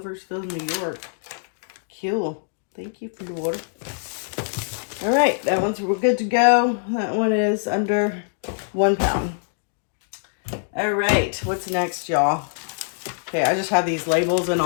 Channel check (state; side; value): silent; right; digital silence